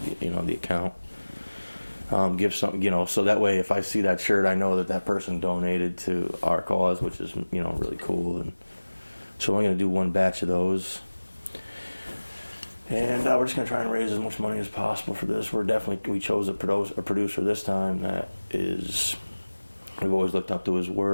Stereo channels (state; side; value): inverted; both; correlation -1.00